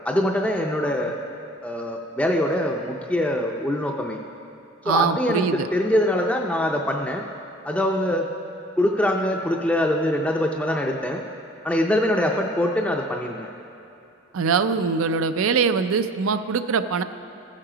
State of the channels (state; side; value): normal; both; correlation 0.50